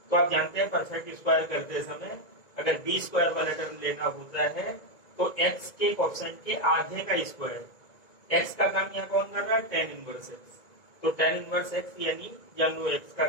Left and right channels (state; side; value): late; right; 2.1 ms